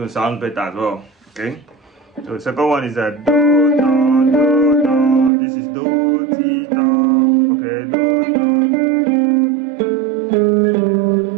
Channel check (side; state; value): left; drops out; at 5.3 s